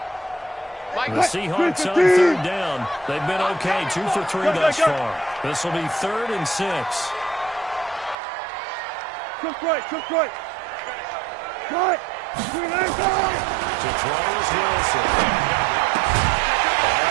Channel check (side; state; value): left; drops out; at 8.2 s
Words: The Seahawks on 3rd down. They've been okay, 2 for 3 thus far. This will be 3rd and 6. Cook right. Cut. To throw is Wilson.